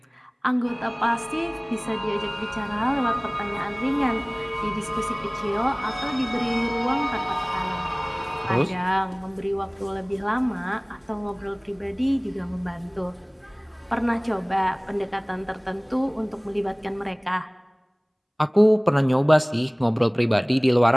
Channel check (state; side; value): identical; both; correlation 1.00